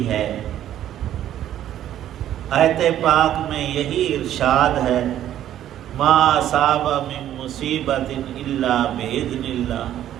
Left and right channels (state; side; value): quieter; left; 11.6 dB